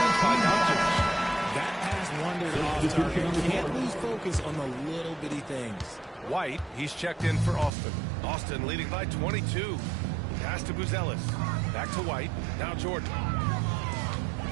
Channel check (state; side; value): drops out; left; at 7.7 s